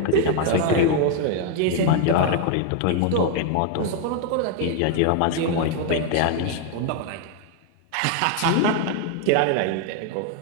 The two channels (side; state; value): both; different; correlation 0.00